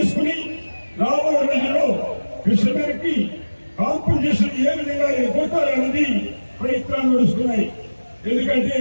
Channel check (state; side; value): inverted; both; correlation -1.00